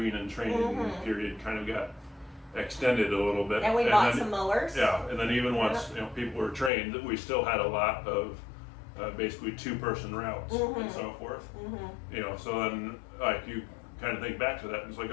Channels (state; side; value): drops out; right; at 6.7 s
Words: and training period kind of got extended a little bit, and we bought some mowers. Yeah, and then even once people were trained, we still had a lot of basically 2-person routes and so forth. So then like you kind of think back to that, and it's like,